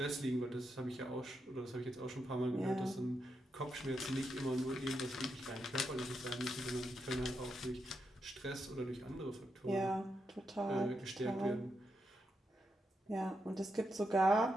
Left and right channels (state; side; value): normal; both; correlation 0.84